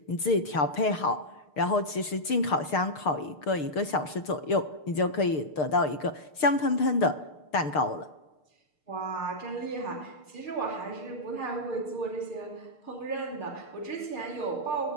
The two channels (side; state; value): right; late; 6.6 ms